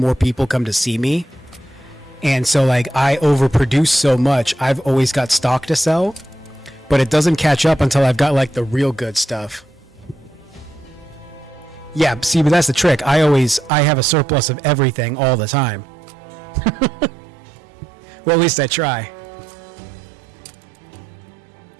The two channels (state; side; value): drops out; left; at 13.7 s